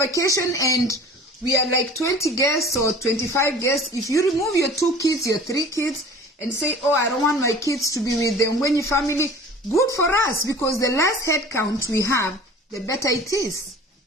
and we are like 20 guests or 25 guests, if you remove your 2 kids, your 3 kids, and say, I don't want my kids to be with the Ngwenyi family, good for us, because the less head count we have, the better it is.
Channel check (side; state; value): both; normal; correlation 0.44